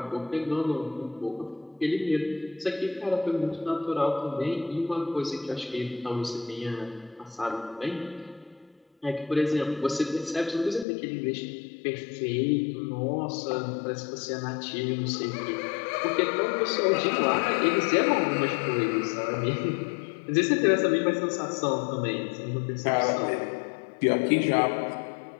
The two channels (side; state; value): right; drops out; at 10.9 s